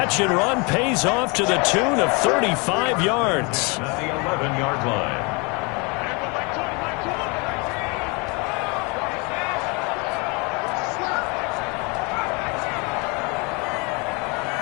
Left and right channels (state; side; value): quieter; right; 30.1 dB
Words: and run pays off to the tune of 35 yards. At the 11-yard line.